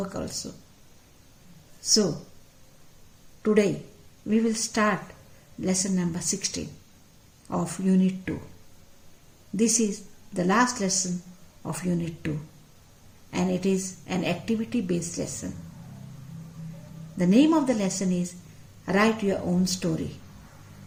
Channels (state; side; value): identical; both; correlation 1.00